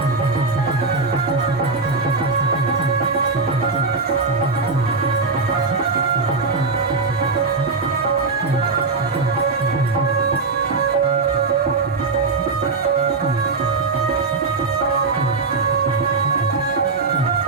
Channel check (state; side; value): quieter; left; 4.1 dB